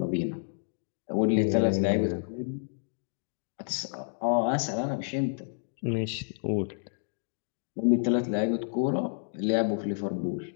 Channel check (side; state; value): right; silent; digital silence